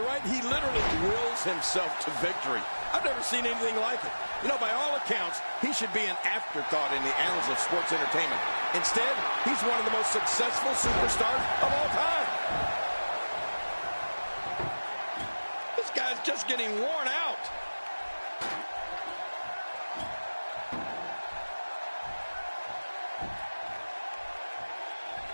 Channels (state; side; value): inverted; both; correlation -1.00